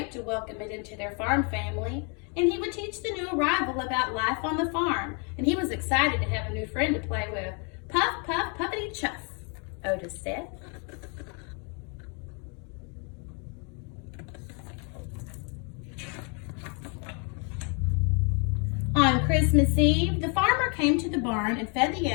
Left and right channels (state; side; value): quieter; right; 36.2 dB